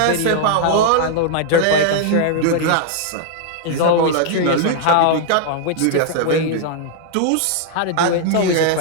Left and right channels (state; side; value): different; both; correlation -0.01